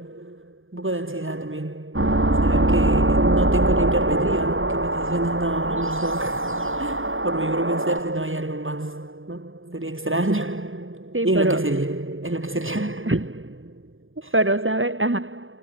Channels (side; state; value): left; late; 0.59 ms